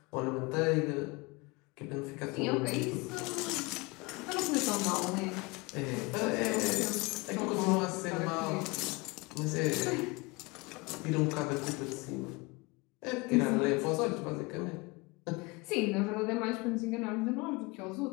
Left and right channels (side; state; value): right; quieter; 25.7 dB